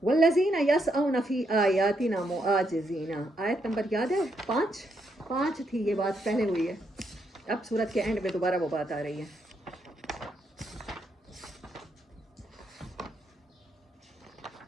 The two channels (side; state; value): both; normal; correlation 0.78